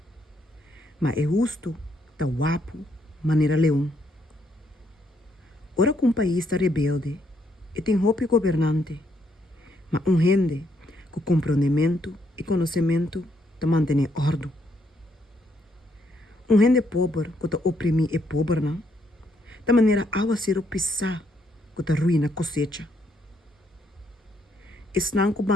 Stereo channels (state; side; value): normal; both; correlation 0.74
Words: Mas é justo ta guapo, maneira leão. Ora que país está rebelde, e tem roupa governante, mas gente com compreendimento e conhecimento ta mantém ordem. Gente pobre que ta oprimir é pobre, não? Da maneira awa ser pisar que ta ruína cosecha. Esnan que